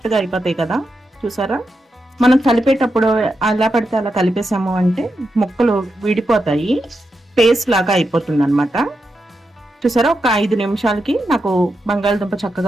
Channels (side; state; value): both; normal; correlation 0.87